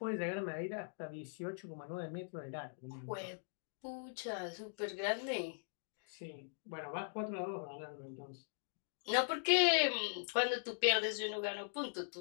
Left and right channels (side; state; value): right; silent; digital silence